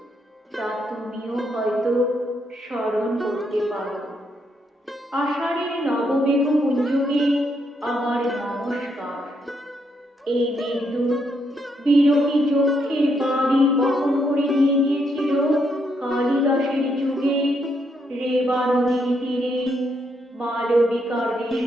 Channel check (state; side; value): normal; both; correlation 0.77